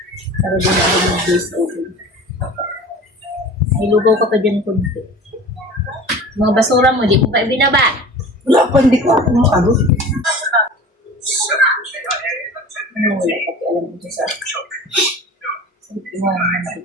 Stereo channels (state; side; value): normal; both; correlation 0.38